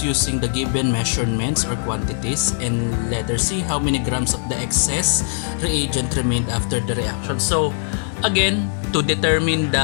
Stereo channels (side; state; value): right; silent; 65 dB below the other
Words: using the given measurements or quantities, and letter C, how many grams of the excess reagent remained after the reaction. So again, to determine